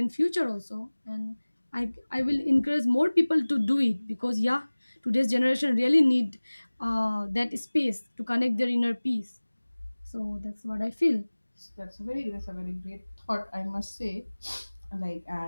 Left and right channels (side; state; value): both; inverted; correlation -1.00